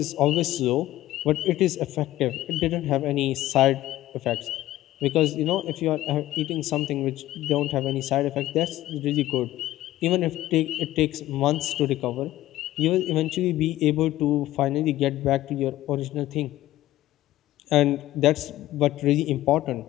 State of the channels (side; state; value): right; quieter; 15.2 dB